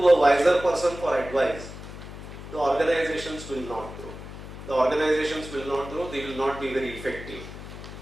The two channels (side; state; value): left; noise; hum, 12 dB below the sound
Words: a wiser person for advice, the organizations will not grow. The organizations will not grow, they will not be very effective.